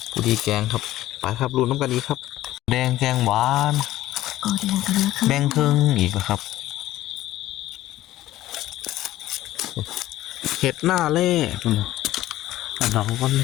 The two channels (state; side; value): quieter; right; 14.9 dB